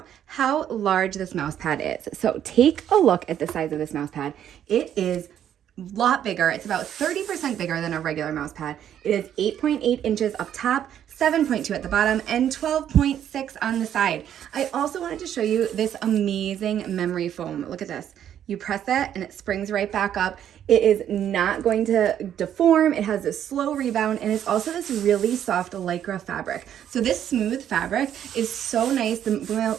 how large this mouse pad is. So take a look at the size of this mouse pad. It is a lot bigger. It's about 30% bigger than a regular mouse pad. It is 8.8 inches up top, 7.2 at the bottom, and 12.6 on the side. I also wanted to show you this amazing memory foam. Look at this. You press it and it springs right back up. It is not going to deform. It has a slow rebound, and it's also this really soft lycra fabric. So this smooth fabric is so nice. The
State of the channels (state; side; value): quieter; left; 10.1 dB